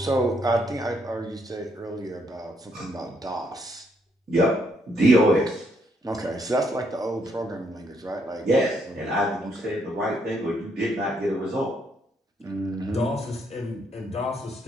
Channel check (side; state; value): both; normal; correlation 0.73